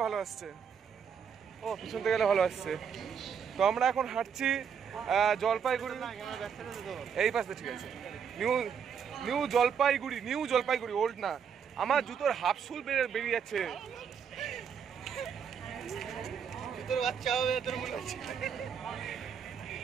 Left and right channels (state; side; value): quieter; left; 7.3 dB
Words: ভালো আসছে, ও পিছন থেকে গেলে ভালো আসছে। তো আমরা এখন হাঁটছি জলপাইগুড়ি, এই পাশে। ঠিক আছে, নিউ জলপাইগুড়ি, ওল্ড না। আমার জুতোর হাফ সুল বেরিয়ে যাচ্ছে। জুতোর বাচ্চা হবে তোর মনে হচ্ছে,